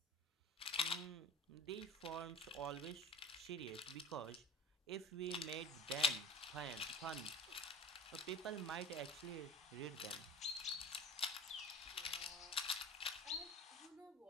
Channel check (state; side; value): normal; both; correlation 0.39